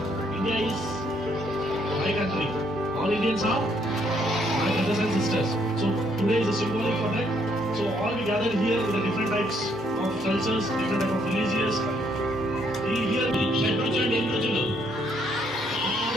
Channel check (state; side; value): normal; both; correlation 0.70